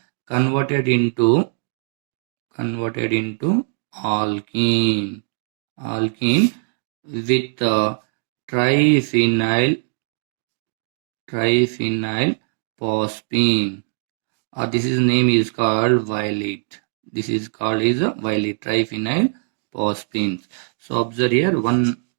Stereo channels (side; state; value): left; silent; 64 dB below the other